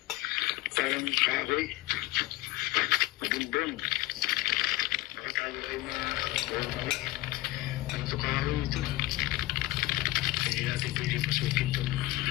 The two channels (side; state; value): right; quieter; 18.5 dB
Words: parang kahoy. Mabumbong. Baka tayo ay ang tukaro ito. Hindi natin pwede pasukin